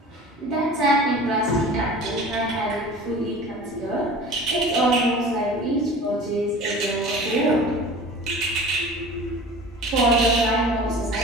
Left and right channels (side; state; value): both; normal; correlation 0.40